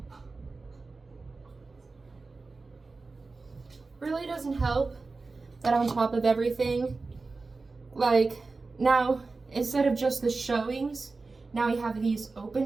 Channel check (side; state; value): left; quieter; 3.8 dB